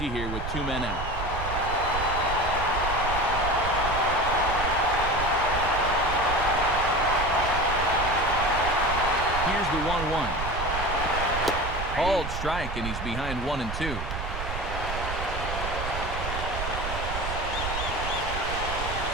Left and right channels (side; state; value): right; noise; rumble, 5 dB below the sound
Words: here with 2 men out. Here's the 1-1. Called strike, and he's behind 1-2.